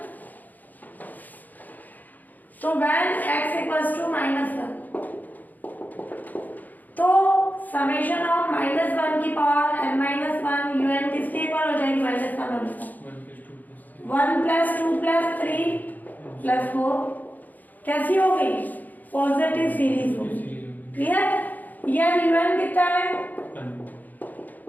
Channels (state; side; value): late; right; 0.083 ms